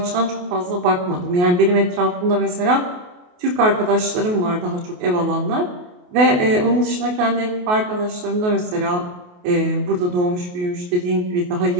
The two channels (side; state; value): left; late; 28 ms